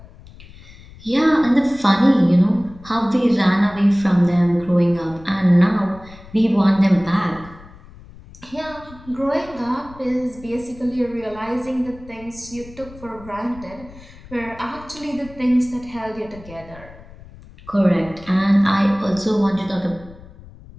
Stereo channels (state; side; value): noise; left; rumble, 20 dB below the sound